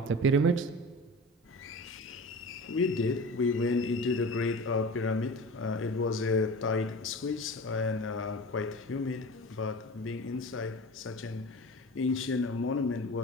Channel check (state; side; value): normal; both; correlation 0.35